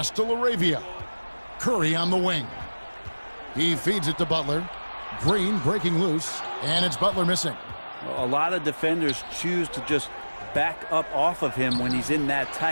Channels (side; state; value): both; inverted; correlation -1.00